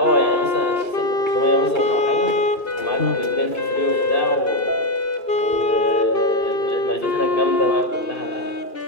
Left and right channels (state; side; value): late; right; 2.3 ms